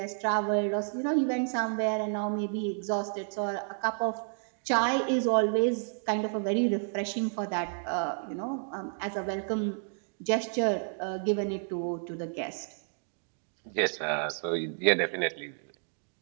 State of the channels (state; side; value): silent; left; 57 dB below the other